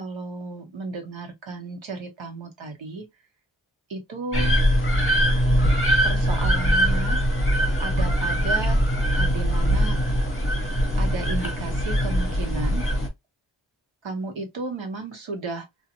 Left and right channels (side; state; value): both; normal; correlation 0.71